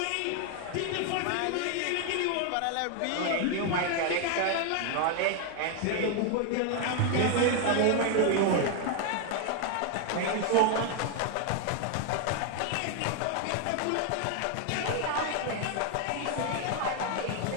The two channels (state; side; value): different; both; correlation 0.00